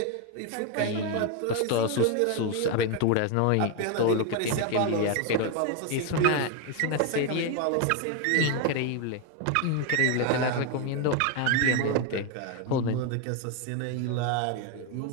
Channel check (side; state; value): both; different; correlation 0.01